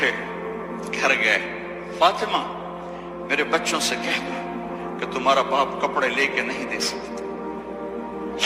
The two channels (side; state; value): both; identical; correlation 1.00